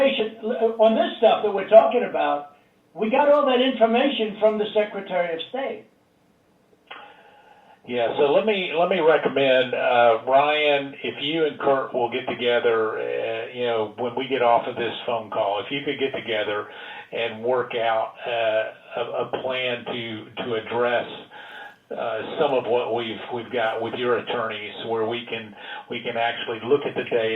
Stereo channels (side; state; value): both; identical; correlation 1.00